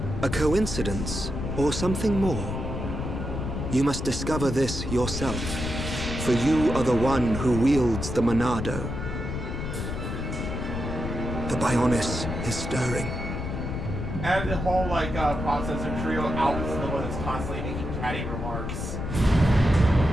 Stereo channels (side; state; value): left; noise; rumble, 4 dB below the sound